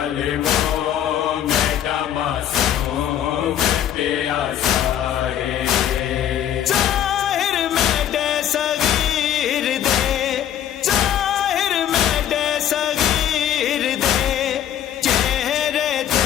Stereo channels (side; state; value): right; quieter; 10.5 dB